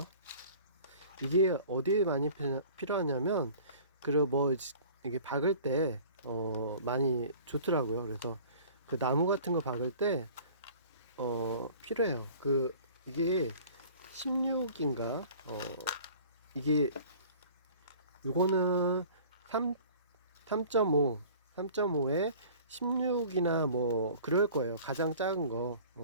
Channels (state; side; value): inverted; both; correlation -0.47